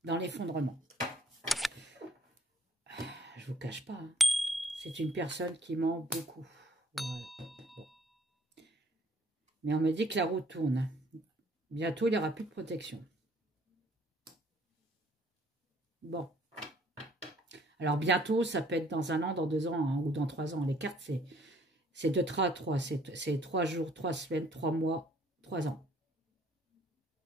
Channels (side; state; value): both; normal; correlation 0.61